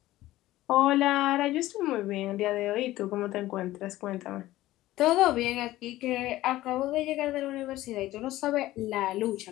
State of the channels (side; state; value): right; quieter; 16.1 dB